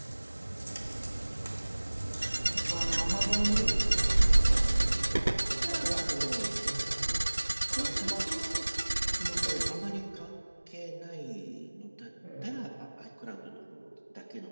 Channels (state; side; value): inverted; both; correlation -1.00